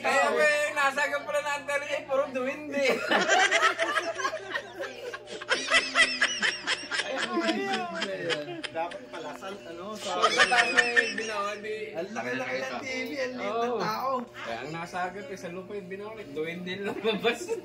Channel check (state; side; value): identical; both; correlation 1.00